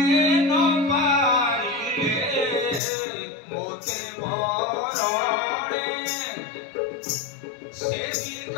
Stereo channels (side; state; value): right; drops out; at 2.8 s